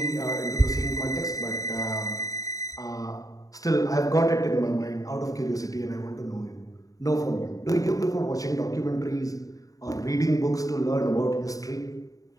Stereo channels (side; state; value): right; late; 0.17 ms